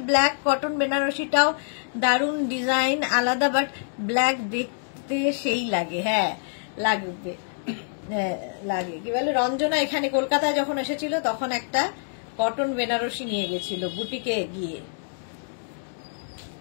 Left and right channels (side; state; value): right; silent; digital silence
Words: ব্ল্যাক কটন বেনারসিটাও দারুণ ডিজাইন, আলাদা, বাট ব্ল্যাক দেখতে সেই লাগে। হ্যাঁ লাগবে, লাগে। কি বলে রঞ্জনা এখানে কলকাতায় যখন এসেছিল তখন একটা কটন বেনারসি নিয়ে গেছিল বুটিকে গিয়ে।